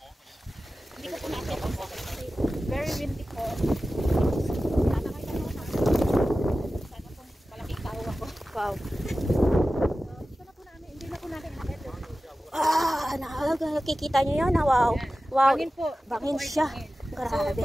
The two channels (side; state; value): both; normal; correlation 0.95